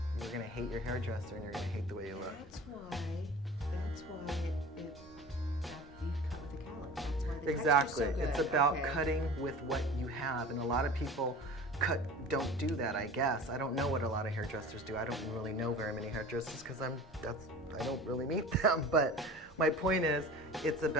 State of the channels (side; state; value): both; normal; correlation 0.39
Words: you're going to hate your hairdresser and you're going to hate the way you look. That's why you cut with the cowlick. That's why the Exactly. texture's so good. It's about cutting with what you have, and a lot of people don't do that, I guess. I don't know what a lot of hairdressers do. I don't really know very many hairdressers because I don't really meet them. But my point is, it's